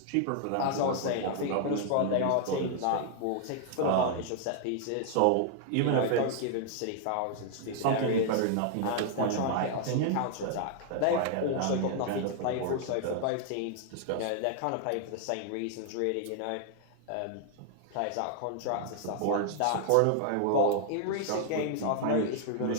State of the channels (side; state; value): both; different; correlation 0.00